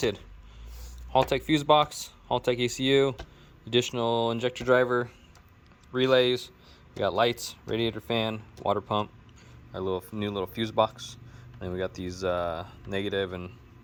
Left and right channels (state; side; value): identical; both; correlation 1.00